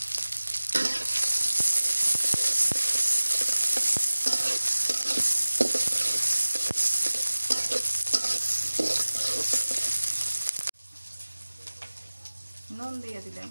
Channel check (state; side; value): inverted; both; correlation -1.00